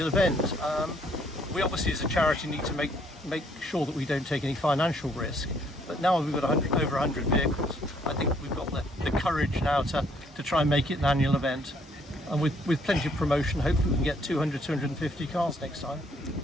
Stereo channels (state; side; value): normal; both; correlation 0.66